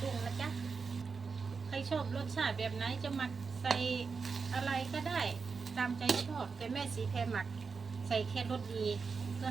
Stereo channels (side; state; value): left; quieter; 5.1 dB